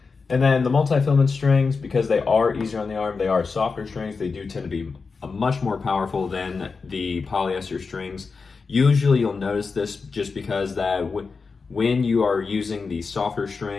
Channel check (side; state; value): right; quieter; 4.7 dB